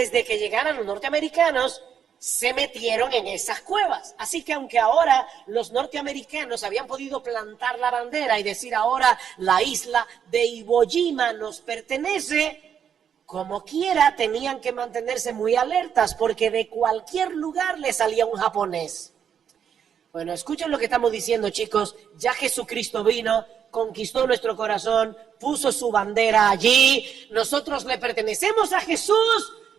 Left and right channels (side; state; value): left; quieter; 8.1 dB